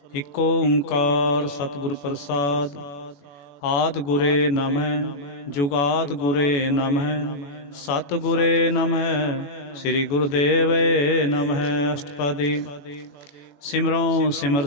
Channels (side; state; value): right; late; 21 ms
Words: ਇਕੋ ਓੰਕਾਰ ਸਤਿਗੁਰ ਪ੍ਰਸਾਦ। ਆਦਿ ਗੁਰੇ ਨਮਹਿ ਜੁਗਾਦ ਗੁਰੇ ਨਮਹਿ ਸਤਿਗੁਰੇ ਨਮਹਿ ਸ੍ਰੀ ਗੁਰੁਦੇਵੇ ਨਮਹਿ। ਅਸ਼ਟਪਦੀ। ਸਿਮਰੋ ਸਿਮਰ